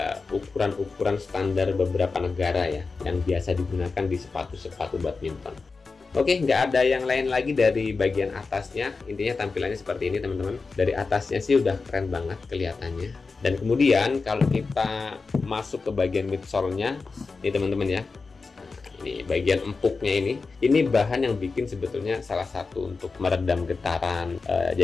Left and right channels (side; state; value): right; quieter; 4.3 dB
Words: ukuran-ukuran standar beberapa negara ya yang biasa digunakan di sepatu-sepatu badminton. Oke, nggak ada yang lain lagi dari bagian atasnya. Intinya tampilannya seperti ini teman-teman. Dari atasnya sih udah keren banget kelihatannya. Dan kemudian kalau kita masuk ke bagian midsole-nya nih teman-teman ya, ini bagian empuknya ini bahan yang bikin sebetulnya salah satu untuk meredam getaran.